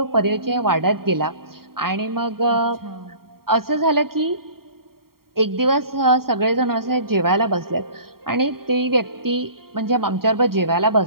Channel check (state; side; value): late; left; 0.93 ms